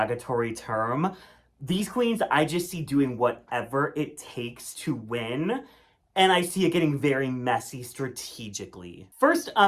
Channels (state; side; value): identical; both; correlation 1.00